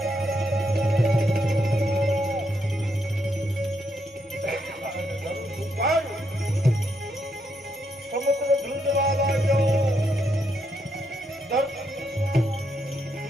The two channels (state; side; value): normal; both; correlation 0.78